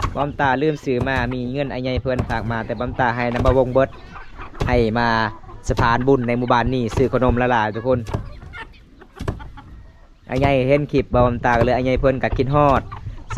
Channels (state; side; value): identical; both; correlation 1.00